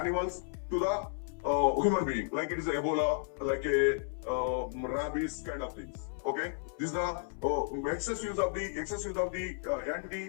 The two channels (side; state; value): right; silent; 56 dB below the other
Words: to the human being, like it is Ebola, like a rabies kind of things. Okay, this is the excess use of the